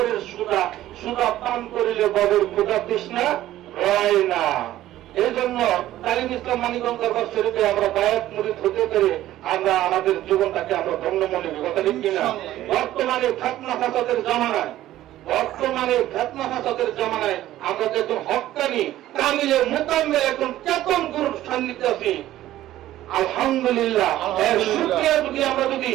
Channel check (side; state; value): left; quieter; 14.1 dB